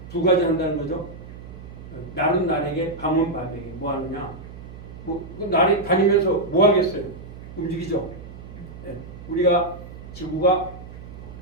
두 가지 한다는 거죠. 날은 날에게, 밤은 밤에게. 뭐 하느냐? 날이 다니면서 뭐 하겠어요? 움직이죠. 네. 우리가 지구가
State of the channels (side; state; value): right; noise; hum, 14 dB below the sound